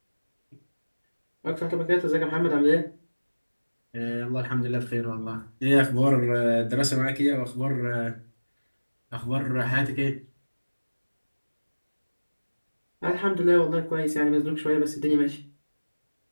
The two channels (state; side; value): inverted; both; correlation -1.00